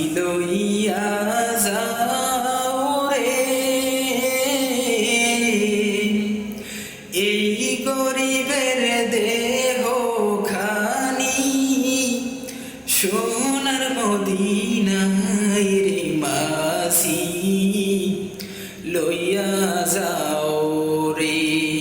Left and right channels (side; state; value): both; identical; correlation 1.00